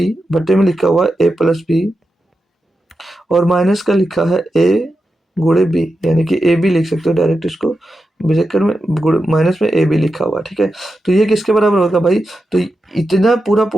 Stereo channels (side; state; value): both; normal; correlation 0.89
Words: बट्टे में लिखा हुआ है ए प्लस बी, और माइनस का लिखा है ए गुणे बी, यानी कि ए बी लिख सकते हो डायरेक्ट इसको, ब्रैकेट में माइनस में ए बी लिखा हुआ। ठीक है, तो ये किसके बराबर होगा भाई, तो इतना पूरा